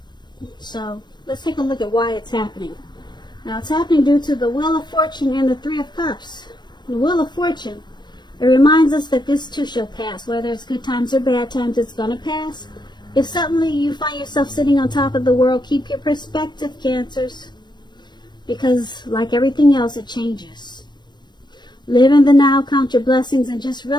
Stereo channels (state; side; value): late; right; 0.21 ms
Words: So let's take a look at why it's happening. Now it's happening due to the Wheel of Fortune and the 3 of Cups. The Wheel of Fortune, it reminds us that this too shall pass. Whether it's good times or bad times, it's going to pass. If suddenly you find yourself sitting on top of the world, keep your perspective, Cancers. Because like everything else, it changes. Live in the now, count your blessings, and just